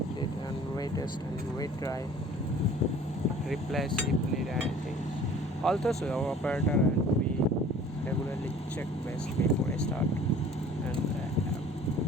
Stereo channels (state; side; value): normal; both; correlation 0.48